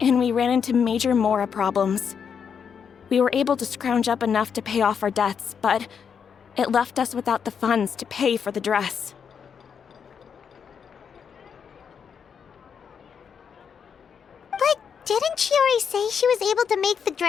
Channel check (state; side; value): quieter; right; 7.0 dB